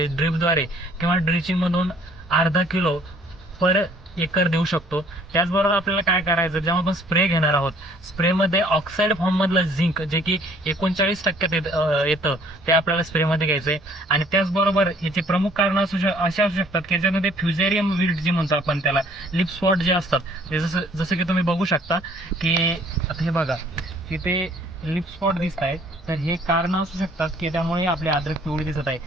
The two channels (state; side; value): normal; both; correlation 0.58